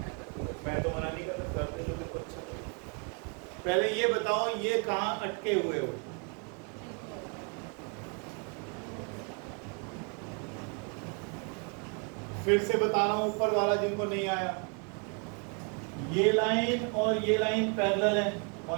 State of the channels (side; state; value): left; quieter; 36.0 dB